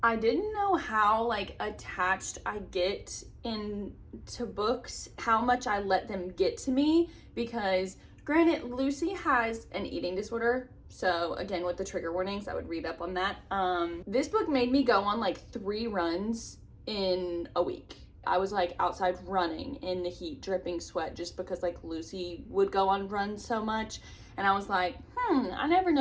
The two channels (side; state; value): both; identical; correlation 1.00